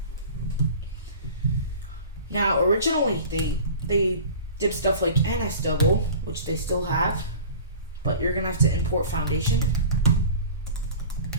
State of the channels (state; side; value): inverted; both; correlation -0.40